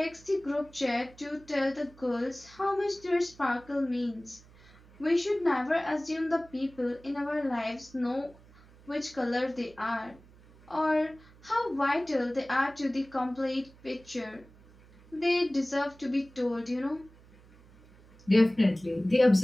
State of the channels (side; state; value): right; noise; hum, 25 dB below the sound